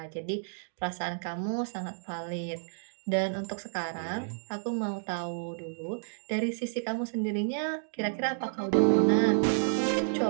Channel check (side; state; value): left; silent; digital silence